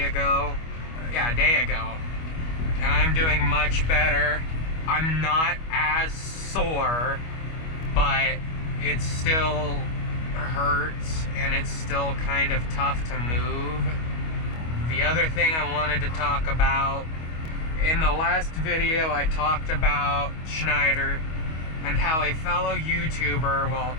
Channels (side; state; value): right; late; 25 ms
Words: ago. Yeah, a day ago. And I'm doing much better. I'm not as sore, but it still hurts and it's still kind of tough to move. The other thing I wanted to talk about, in the last video I talked about Schneider and how a fellow YouTuber, well,